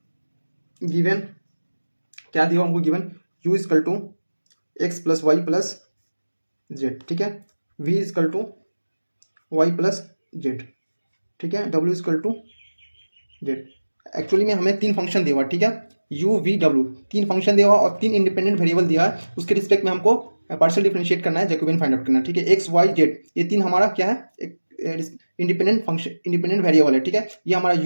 Given क्या दिया हमको? Given u equal to x plus y plus z. ठीक है, v equal to y plus z. ठीक है, w इजकल टू जेड. एक्चुअली में हमें 3 फंक्शन दिया हुआ. ठीक है, u v w 3 फंक्शन दिया हुआ और 3 इंडिपेंडेंट वेरिएबल दिया है. उसके रिस्पेक्ट में हमको पार्शियल डिफरेंशिएट करना है, जैकोबियन फाइंड आउट करना है. ठीक है, x y z ये 3 हमारा क्या है? एक इंडिपेंडेंट फंक्शन, इंडिपेंडेंट वेरिएबल है. ठीक है, ये हमारा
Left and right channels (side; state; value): both; inverted; correlation -1.00